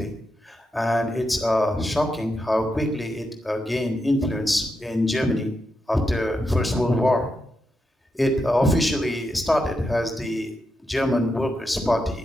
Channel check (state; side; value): normal; both; correlation 0.85